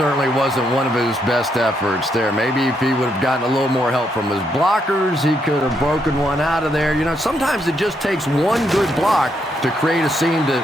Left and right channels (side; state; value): both; normal; correlation 0.77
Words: wasn't one of his best efforts there. Maybe if he would have gotten a little more help from his blockers, he could have broken one out of there. You know, sometimes it just takes one good block to create a seam to